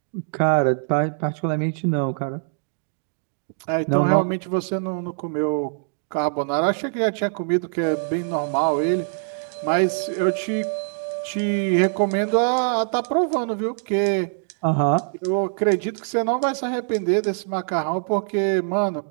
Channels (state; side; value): silent; left; digital silence